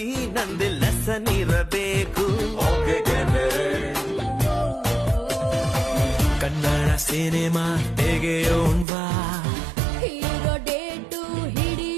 ನಂದು ಲೆಸನ್ ಇರಬೇಕು. ಕನ್ನಡ ಸಿನಿಮಾ ತೆಗೆಯೋಣ್ವಾ, ಹೀರೋ ಡೇಟು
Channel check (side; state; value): left; drops out; at 8.8 s